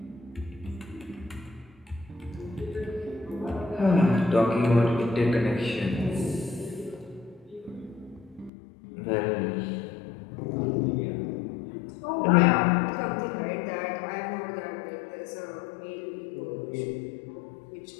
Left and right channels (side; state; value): right; drops out; at 8.5 s